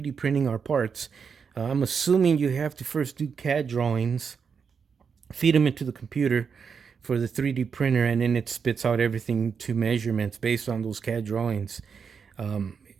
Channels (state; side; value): quieter; left; 6.2 dB